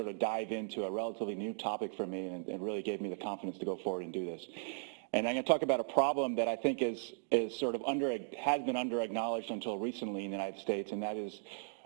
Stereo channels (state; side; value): silent; left; digital silence